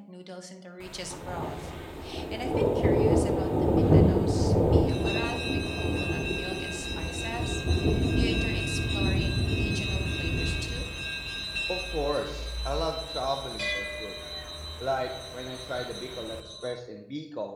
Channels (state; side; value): identical; both; correlation 1.00